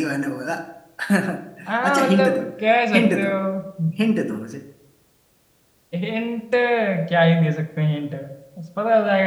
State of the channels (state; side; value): identical; both; correlation 1.00